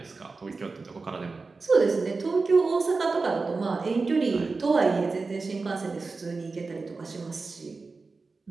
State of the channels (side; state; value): left; quieter; 4.0 dB